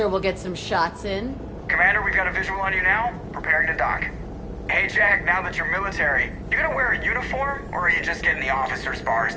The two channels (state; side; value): identical; both; correlation 1.00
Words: we'll get some shots in. Commander, we've got a visual on you now. Preparing to dock. Hey, Jack, now that you're military, you gonna wear a uniform, or are you just getting the officer's bars